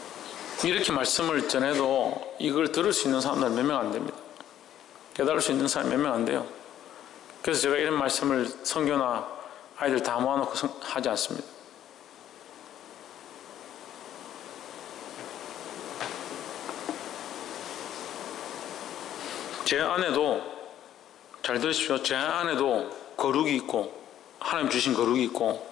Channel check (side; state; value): right; quieter; 11.4 dB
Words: 이렇게 말씀을 전해도 이걸 들을 수 있는 사람들은 몇 명 안 됩니다. 깨달을 수 있는 사람이 몇 명 안 돼요. 그래서 제가 이런 말씀을 선교나 아이들 다 모아놓고 하지 않습니다. 제 안에도, 잘 들으십시오. 제 안에도 거룩이 있고, 하나님 주신 거룩이 있고,